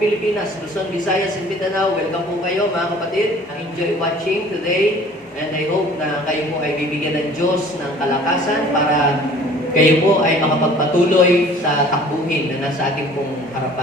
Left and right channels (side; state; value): both; normal; correlation 0.50